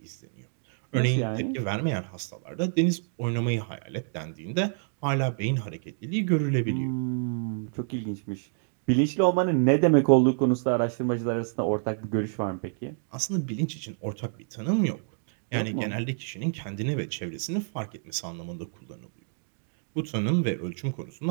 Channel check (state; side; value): silent; left; digital silence